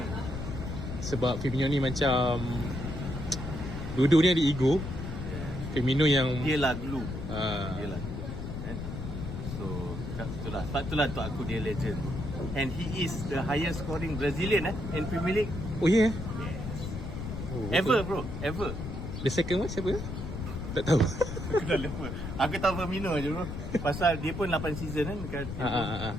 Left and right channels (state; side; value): noise; left; rumble, 6 dB below the sound